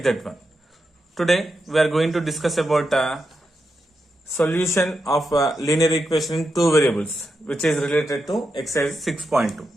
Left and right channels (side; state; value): both; normal; correlation 0.86